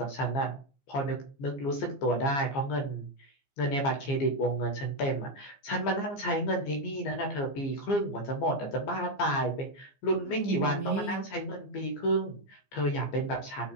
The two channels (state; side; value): late; right; 15 ms